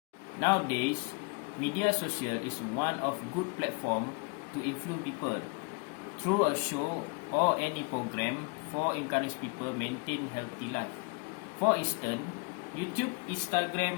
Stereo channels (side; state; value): right; quieter; 32.1 dB